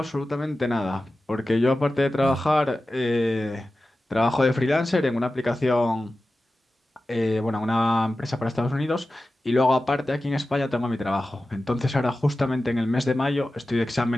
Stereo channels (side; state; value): both; normal; correlation 0.94